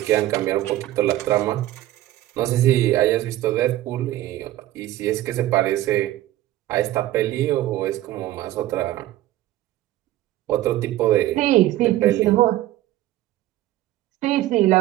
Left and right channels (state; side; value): quieter; left; 14.9 dB